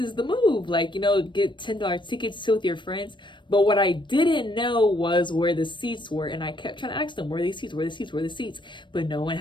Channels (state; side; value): late; right; 0.23 ms